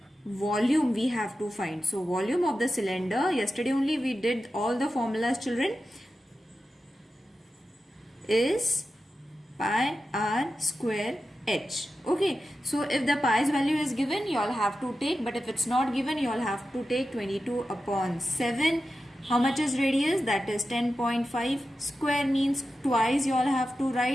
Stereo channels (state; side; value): normal; both; correlation 0.92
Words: volume we have to find. So volume of the cylinder, yesterday only we did all the formulas children, is pi r square h. Okay, so if the pi's value is given you all have to take, but if it's not given you all have to take 22 upon 7. How much is radius? That is 10.5. Square means twice you all have to